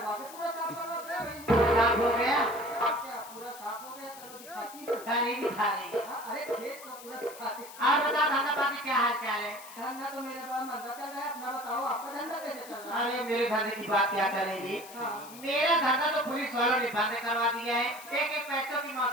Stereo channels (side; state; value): left; noise; hiss, 16 dB below the sound